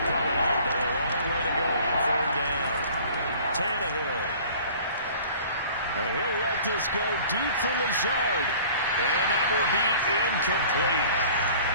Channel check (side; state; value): both; inverted; correlation -0.48